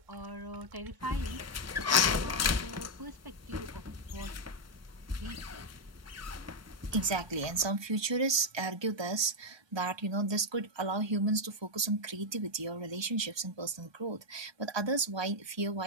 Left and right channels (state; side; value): late; left; 1.2 ms